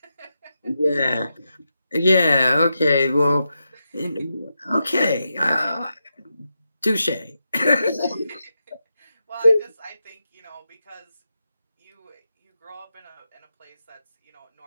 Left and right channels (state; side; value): inverted; both; correlation -0.87